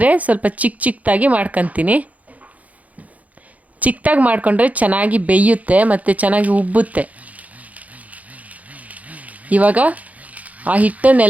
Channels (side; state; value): left; late; 0.072 ms